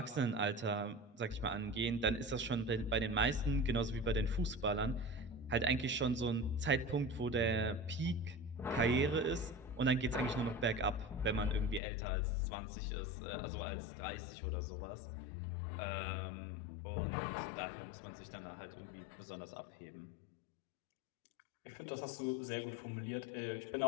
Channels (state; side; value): drops out; right; at 11.8 s